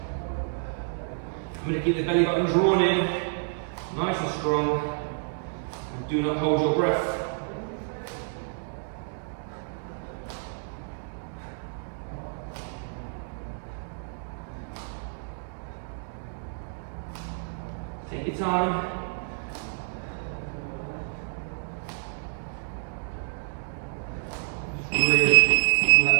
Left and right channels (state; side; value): silent; left; 59 dB below the other